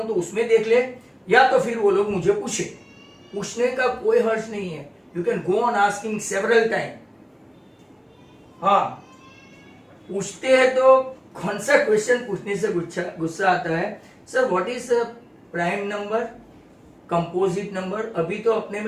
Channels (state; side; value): identical; both; correlation 1.00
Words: तो उसमें देख ले, या तो फिर वो लोग मुझे पूछे। पूछने का कोई हर्ज नहीं है, you can go on asking several time. हाँ, पूछते हैं तो कौन सा क्वेश्चन पूछने से गुस्सा आता है? Sir what is prime number, composite number. अभी तो अपने